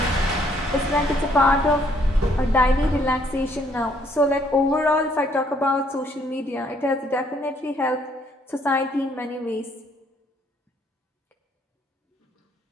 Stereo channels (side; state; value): both; normal; correlation 0.67